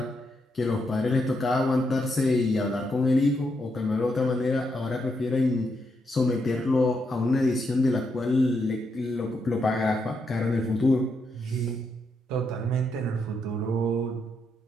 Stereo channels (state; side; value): normal; both; correlation 0.80